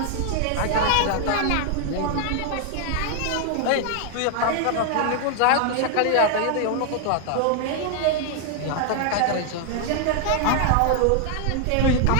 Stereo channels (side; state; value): both; different; correlation 0.00